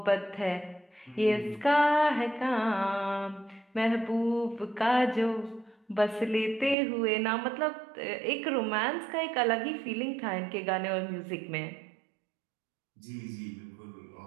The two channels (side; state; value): left; drops out; at 6.8 s